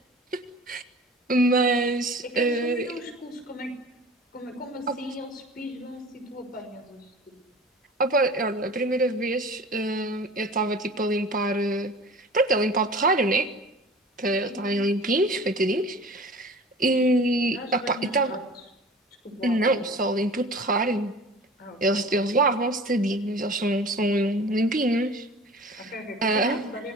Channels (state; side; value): normal; both; correlation 0.41